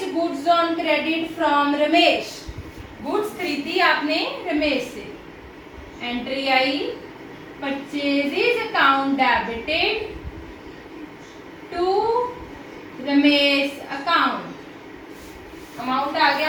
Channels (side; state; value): both; identical; correlation 1.00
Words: goods on credit from Ramesh. Goods खरीदी आपने रमेश से। एंट्री आई purchases account debited to Ramesh account. Amount आ गया